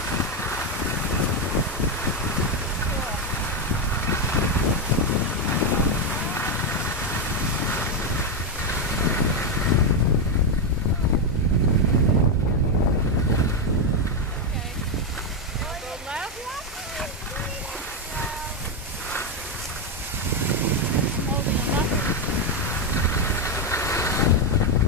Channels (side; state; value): both; normal; correlation 0.06